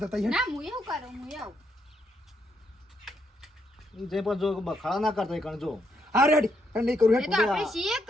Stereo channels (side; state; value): both; normal; correlation 0.77